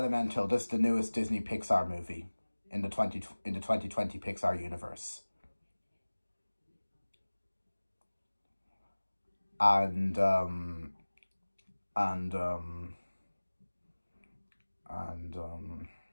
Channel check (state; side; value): inverted; both; correlation -1.00